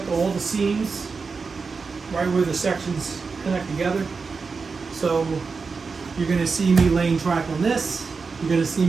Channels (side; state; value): left; quieter; 4.8 dB